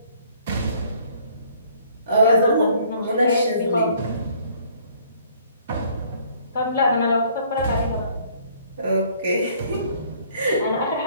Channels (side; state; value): both; inverted; correlation -0.60